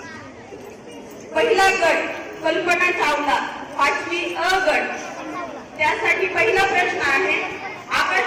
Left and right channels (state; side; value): identical; both; correlation 1.00